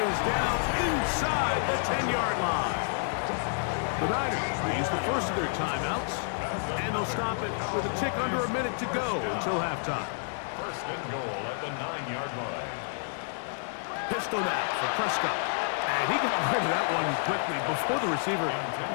is down inside the 10-yard line. The Niners will use the first of their timeouts, and they'll stop it with a tick under a minute to go until halftime. 1st and goal at the 9-yard line. Pistol now for Prescott. And he got rid of that one quickly before the receiver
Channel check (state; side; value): silent; right; digital silence